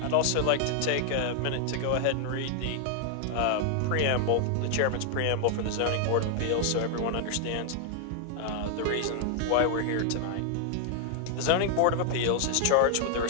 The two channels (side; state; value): both; different; correlation 0.00